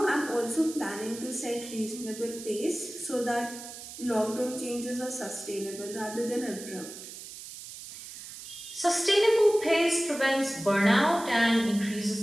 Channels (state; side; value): noise; right; hiss, 13 dB below the sound